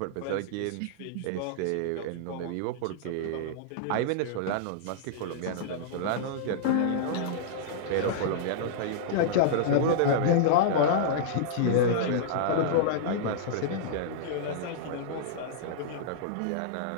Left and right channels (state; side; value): different; both; correlation -0.02